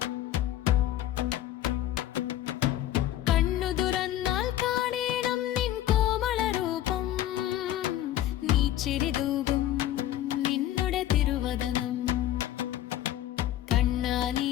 കണ്ണു തുറന്നാൽ കാണേണം നിൻ കോമള രൂപം, നീ ചിരി തൂകും നിന്നുടെ തിരുവദനം. കണ്ണാ നീ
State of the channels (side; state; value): right; quieter; 12.9 dB